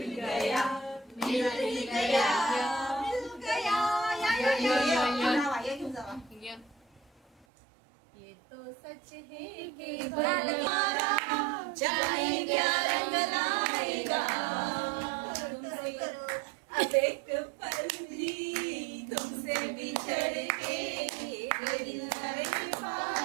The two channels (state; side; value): drops out; left; at 7.5 s